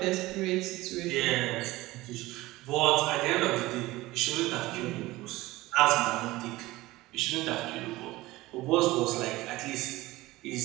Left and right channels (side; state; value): left; quieter; 18.9 dB